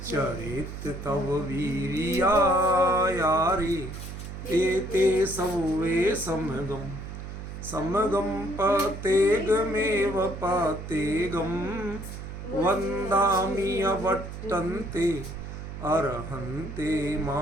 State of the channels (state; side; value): noise; right; hum, 9 dB below the sound